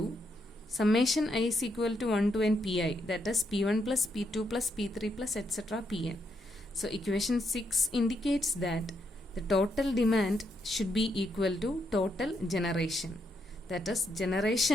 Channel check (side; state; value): both; normal; correlation 0.78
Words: summation I is equal to 1 to n Pi, that is P1 plus P2 plus P3 plus etc. Pn. So equation 6 indicates that the total demand should be equal to total generation. That is,